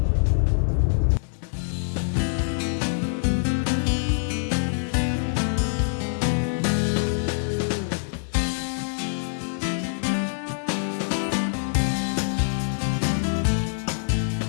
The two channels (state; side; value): silent; right; 59 dB below the other